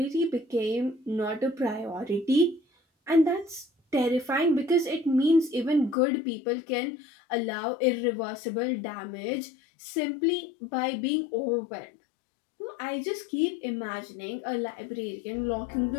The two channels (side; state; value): right; drops out; at 6.0 s